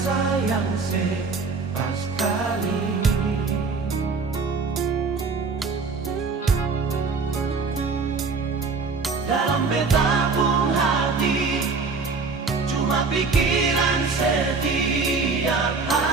pas kali. Dalam beta pun hati cuma pikiran setiap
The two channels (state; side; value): quieter; left; 4.5 dB